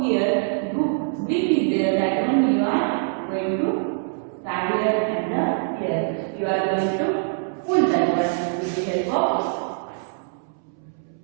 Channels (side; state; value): left; silent; 63 dB below the other